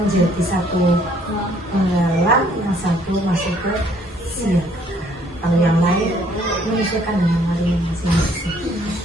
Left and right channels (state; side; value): normal; both; correlation 0.63